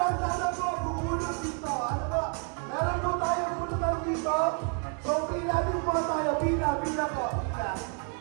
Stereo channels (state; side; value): quieter; left; 39.2 dB